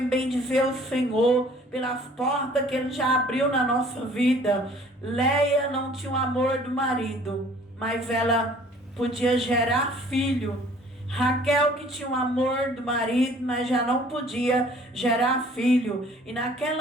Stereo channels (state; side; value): normal; both; correlation 0.54